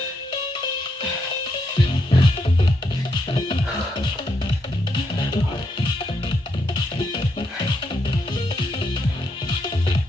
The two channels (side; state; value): both; normal; correlation 0.79